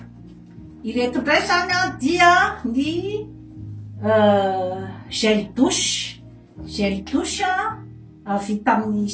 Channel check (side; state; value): both; identical; correlation 1.00